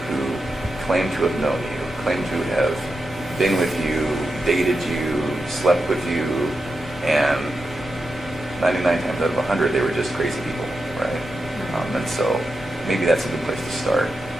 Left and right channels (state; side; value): normal; both; correlation 0.88